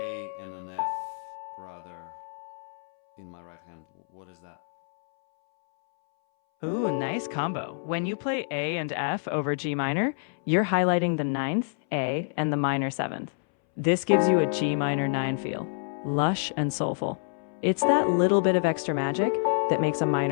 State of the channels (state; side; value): silent; right; 60 dB below the other